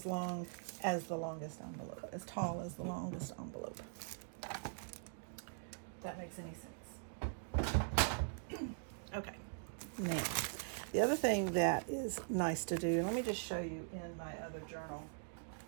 long as the longest envelope, as tall as the longest envelope. If that makes any sense. Okay. Now, the other thing that is nice to do, and let me just show you in my other journal.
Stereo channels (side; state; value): left; silent; digital silence